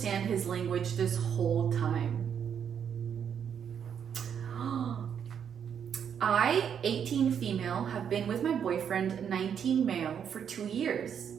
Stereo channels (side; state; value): left; quieter; 8.0 dB